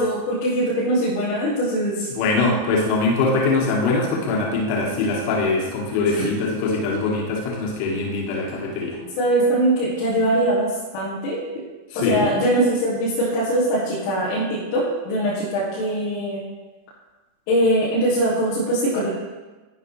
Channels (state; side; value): late; right; 31 ms